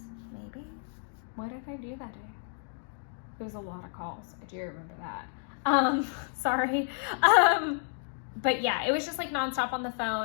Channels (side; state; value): right; silent; 57 dB below the other